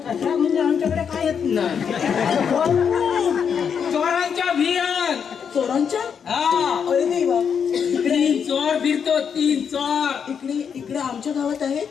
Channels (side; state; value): right; quieter; 7.1 dB